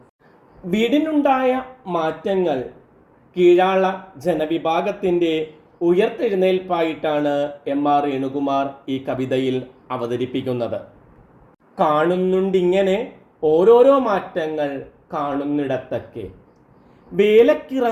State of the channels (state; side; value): identical; both; correlation 1.00